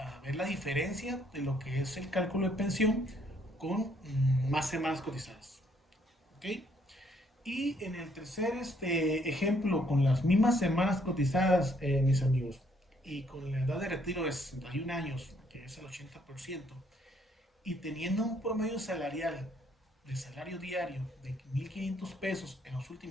ver la diferencia de lo que es el cálculo de pensión con más semanas cotizadas. ¿Ok? Y en el tercer ejemplo, con las mismas semanas cotizadas, mis amigos, y con la edad de retiro de 61 años, que es el 80%, y teniendo un promedio salarial de salario diario de 1.500 pesos en los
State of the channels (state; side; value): normal; both; correlation 0.68